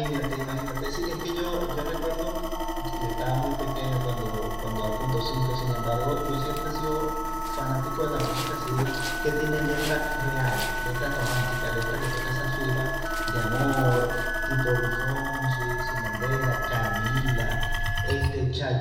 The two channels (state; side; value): identical; both; correlation 1.00